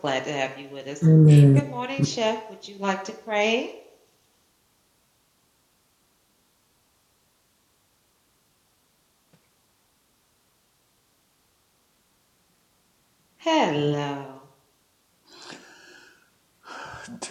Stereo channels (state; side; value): identical; both; correlation 1.00